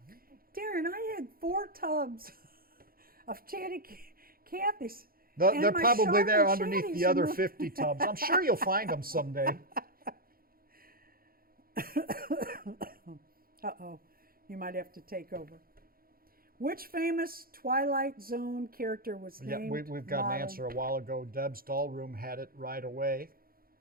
Darren, I had 4 tubs of Chatty Cathy's. They're probably there underneath Chatties the other 50 tubs. I'm sure you'll find them someday. Uh-oh. You might have to take over. Which famous Twilight Zone character was Yeah, named we've got an modeled- answer a while ago. Deb's doll room had it right away.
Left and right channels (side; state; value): left; late; 0.42 ms